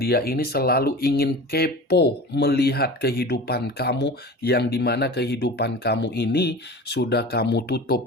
ini selalu ingin kepo melihat kehidupan kamu, yang dimana kehidupan kamu ini sudah kamu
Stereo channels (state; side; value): normal; both; correlation 0.35